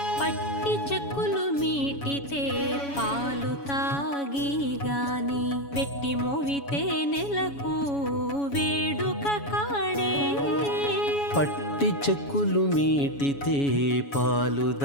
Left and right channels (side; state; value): right; late; 7.1 ms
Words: పట్టి చెక్కులు మీటితే పాలు తాగి గాని వెట్టి మోవితే నెలకు వేడుక కాడే పట్టి చెక్కులు మీటితే పాలు